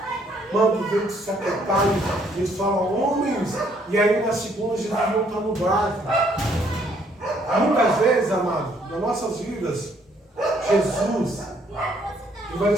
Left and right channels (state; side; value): normal; both; correlation 0.66